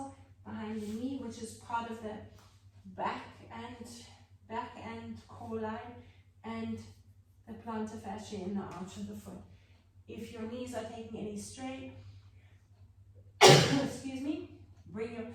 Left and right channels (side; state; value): both; identical; correlation 1.00